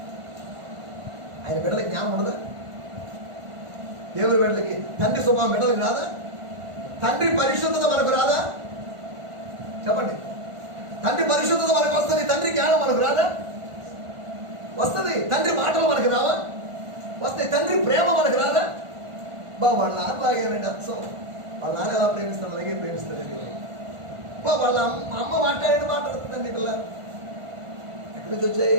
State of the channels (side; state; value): left; late; 1.5 ms